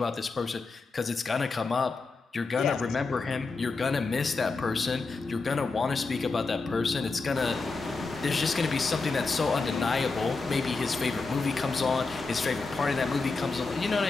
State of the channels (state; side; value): quieter; right; 4.0 dB